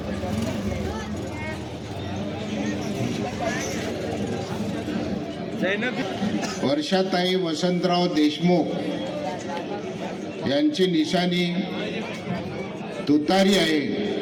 वर्षाताई वसंतराव देशमुख यांची निशाणी तुतारी आहे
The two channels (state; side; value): identical; both; correlation 1.00